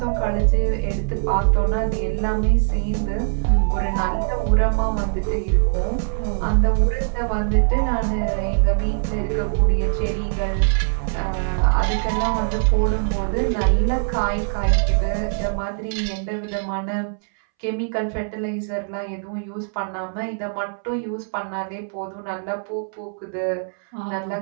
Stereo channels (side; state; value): left; silent; 64 dB below the other